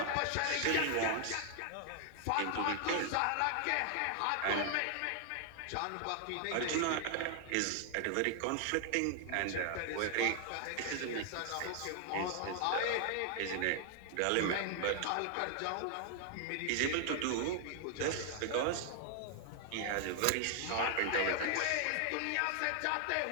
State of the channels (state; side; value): different; both; correlation 0.00